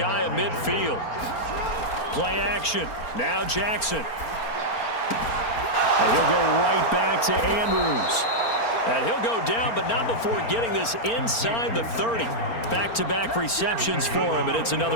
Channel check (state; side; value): late; right; 4.4 ms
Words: of midfield. Play action. Now Jackson. And he'll go right back to Andrews. And he'll go down, but not before getting this inside the 30. Back-to-back receptions for him, and it's